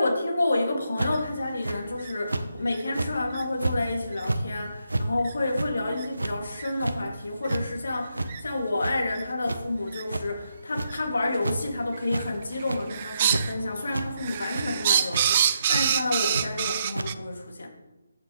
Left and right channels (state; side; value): inverted; both; correlation -0.80